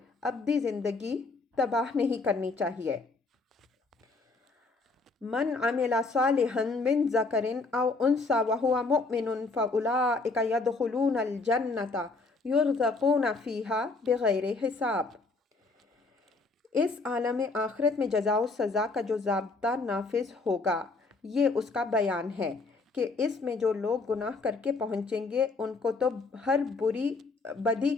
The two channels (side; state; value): right; quieter; 3.8 dB